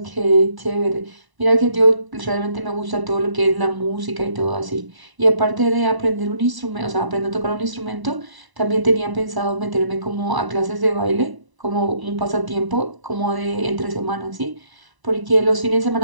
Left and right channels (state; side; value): late; left; 1.0 ms